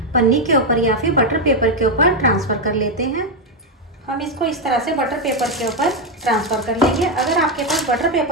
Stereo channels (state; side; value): normal; both; correlation 0.04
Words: पन्नी के ऊपर या फिर बटर पेपर के ऊपर ट्रांसफ़र कर लेते हैं। हम इसको इस तरह से बटर पेपर के ऊपर ट्रांसफ़र कर लेंगे। अगर आपके पास बटर